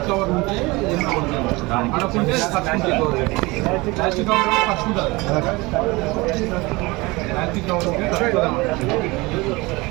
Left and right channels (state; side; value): quieter; left; 23.4 dB